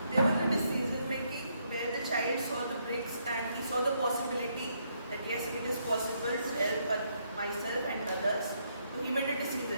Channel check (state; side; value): inverted; both; correlation -0.74